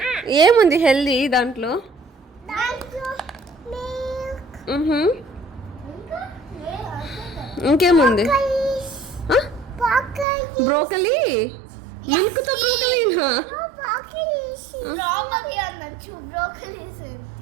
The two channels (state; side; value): drops out; left; at 10.2 s